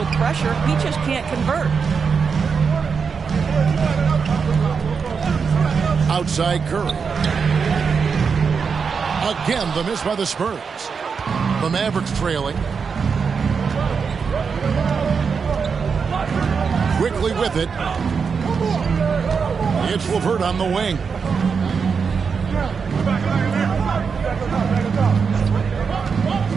pressure. He just can't convert. Outside Curry. Again, the miss by the Spurs. The Mavericks trailing. Quickly with it. It's LeVert on the wing.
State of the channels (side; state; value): left; quieter; 5.8 dB